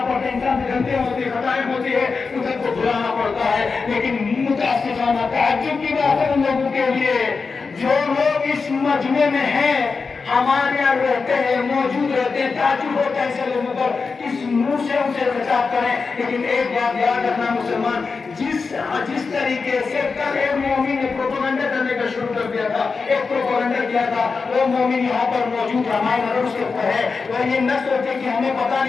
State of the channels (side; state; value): right; quieter; 4.7 dB